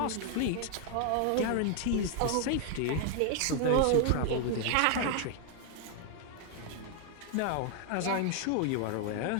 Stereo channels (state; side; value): different; both; correlation 0.00